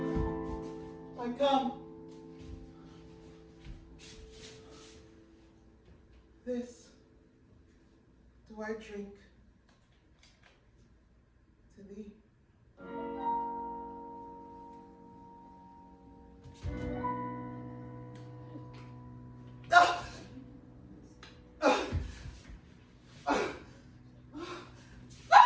I come. This do I drink to thee.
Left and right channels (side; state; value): both; identical; correlation 1.00